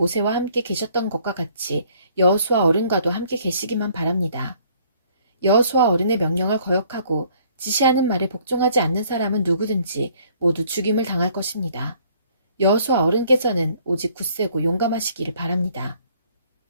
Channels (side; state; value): both; inverted; correlation -0.61